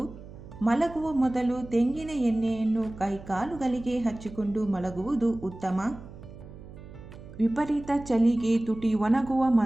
ಮಲಗುವ ಮೊದಲು ತೆಂಗಿನ ಎಣ್ಣೆಯನ್ನು ಕೈಕಾಲುಗಳಿಗೆ ಹಚ್ಚಿಕೊಂಡು ಮಲಗುವುದು ಉತ್ತಮ. ವಿಪರೀತ ಚಳಿಗೆ ತುಟಿ ಒಣಗುವ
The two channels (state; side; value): noise; right; hum, 16 dB below the sound